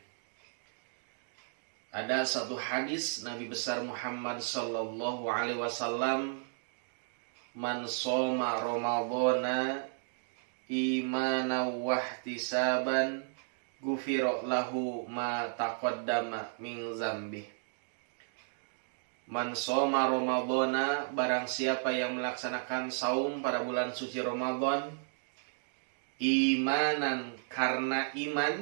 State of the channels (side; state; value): left; silent; digital silence